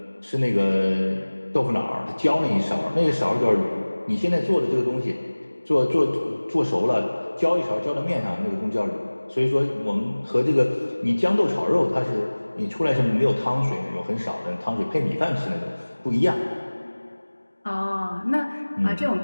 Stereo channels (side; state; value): both; inverted; correlation -1.00